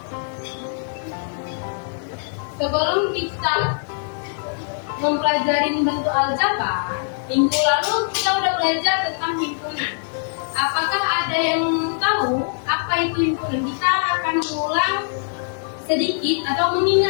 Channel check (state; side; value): silent; right; digital silence